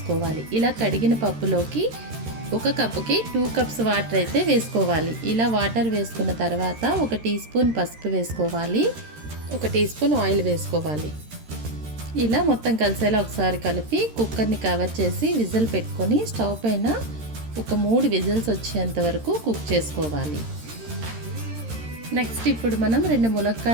ఇలా కడిగిన పప్పులోకి 1 కప్పుకి 2 కప్స్ వాటర్ అయితే వేసుకోవాలి. ఇలా వాటర్ వేసుకున్న తర్వాత 1 టీ స్పూన్ పసుపు వేసుకోవాలి, 1 టీ స్పూన్ ఆయిల్ వేసుకోవాలి. ఇలా మొత్తం కలిసేలా ఒకసారి కలిపి కుక్కర్ని కవర్ చేసి విజిల్ పెట్టుకొని స్టవ్ పైన ఒక 3 విజిల్స్ వచ్చేంత వరకు కుక్ చేసుకోవాలి. నెక్స్ట్ ఇప్పుడు మనం 2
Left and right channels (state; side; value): late; left; 13 ms